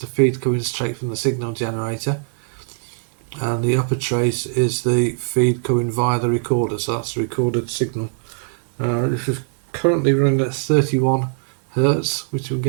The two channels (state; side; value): silent; left; digital silence